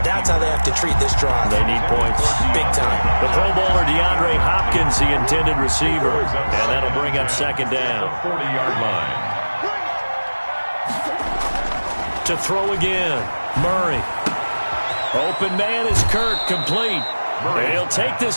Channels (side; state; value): both; inverted; correlation -1.00